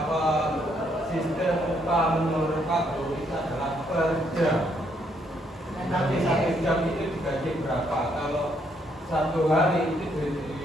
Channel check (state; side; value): normal; both; correlation 0.72